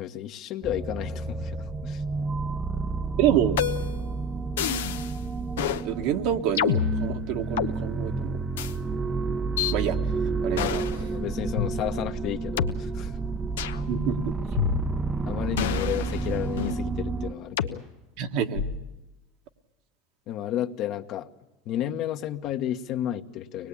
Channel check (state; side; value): normal; both; correlation 0.31